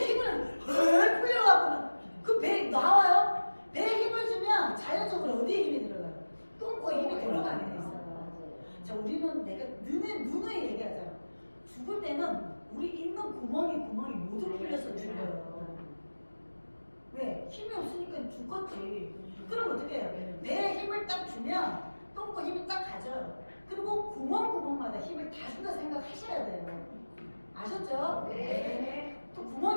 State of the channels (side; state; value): both; inverted; correlation -1.00